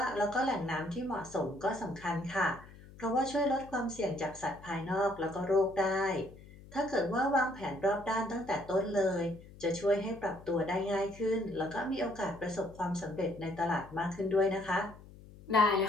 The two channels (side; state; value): left; noise; hum, 19 dB below the sound